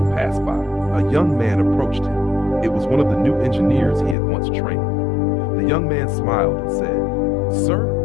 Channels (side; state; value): right; drops out; at 4.2 s